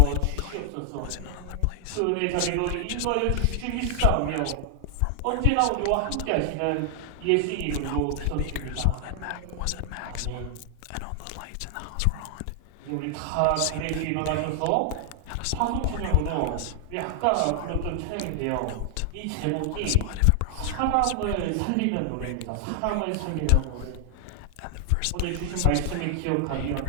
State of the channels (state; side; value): different; both; correlation 0.00